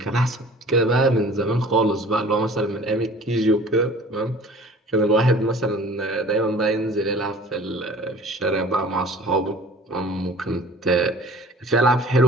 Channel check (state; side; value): normal; both; correlation 0.46